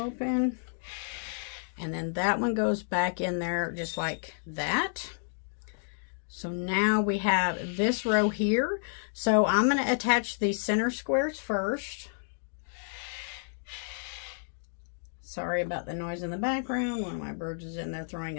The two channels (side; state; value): right; silent; digital silence